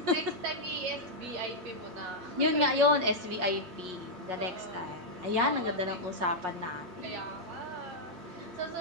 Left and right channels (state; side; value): late; left; 8.8 ms